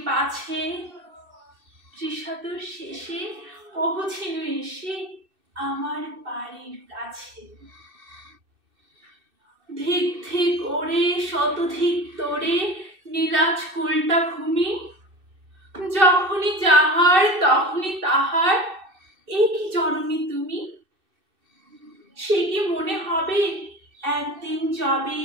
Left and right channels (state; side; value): late; left; 2.6 ms